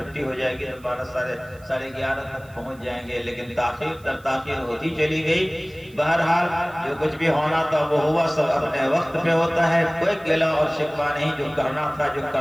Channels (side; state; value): right; noise; hiss, 27 dB below the sound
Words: ہو جائے گی تو 12:30 تک پہنچ جائیں گے، لیکن تاخیر در تاخیر ہوتی چلی گئی۔ بہرحال جو کچھ بھی ہونا تھا وہ ہوا، سب اپنے وقت پہ ہوتا ہے، کوئی گلہ اور شکوہ نہیں، جو کرنا